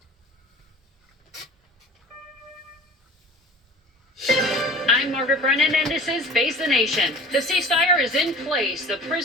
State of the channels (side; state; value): both; normal; correlation 0.42